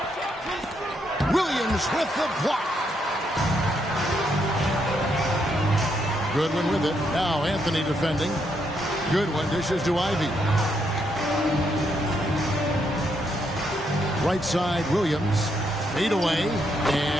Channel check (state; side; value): normal; both; correlation 0.77